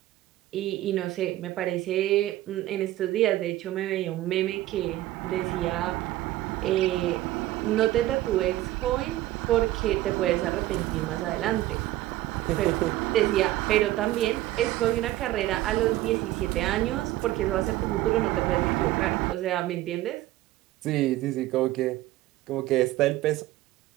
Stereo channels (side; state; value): left; quieter; 15.6 dB